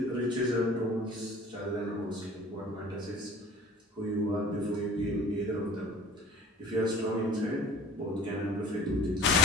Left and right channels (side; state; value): both; normal; correlation 0.45